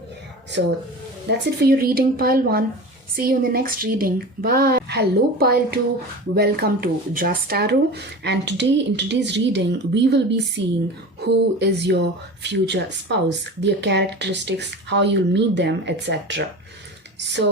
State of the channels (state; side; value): normal; both; correlation 0.33